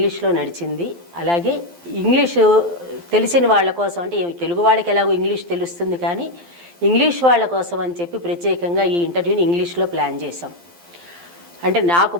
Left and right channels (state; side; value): late; left; 12 ms